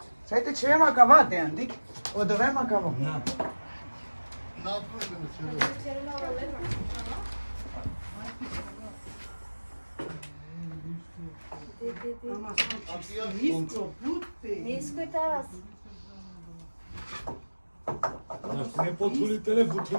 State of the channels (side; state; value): both; inverted; correlation -1.00